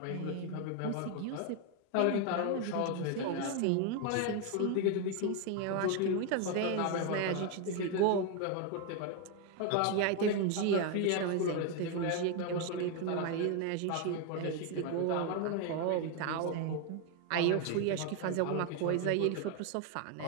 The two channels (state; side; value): different; both; correlation 0.01